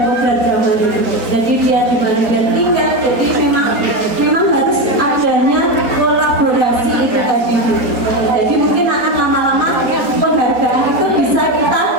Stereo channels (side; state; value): left; late; 4.2 ms